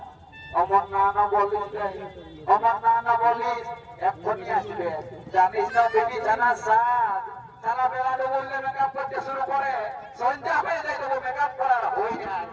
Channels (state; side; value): identical; both; correlation 1.00